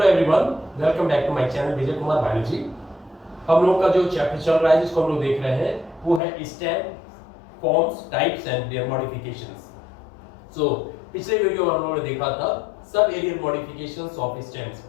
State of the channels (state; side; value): drops out; right; at 6.2 s